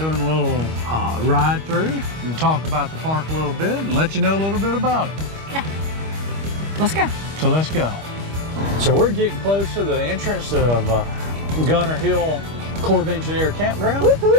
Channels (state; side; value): late; left; 25 ms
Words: a little ride through and talk about the park a little bit and let you know a little bit about it. Yeah, let's go. So let's go. So we're getting close to the entrance of Gunter Hill Corps of Engineer Campground.